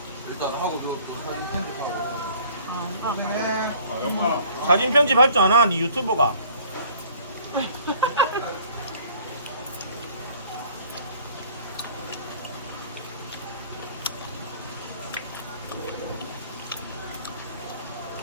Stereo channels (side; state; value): both; inverted; correlation -0.53